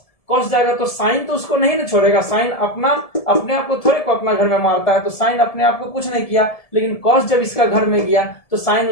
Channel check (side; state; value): right; late; 1.7 ms